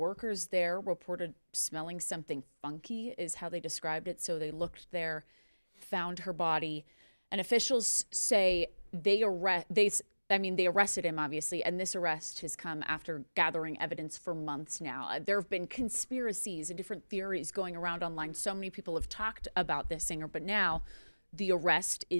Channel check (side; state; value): both; inverted; correlation -1.00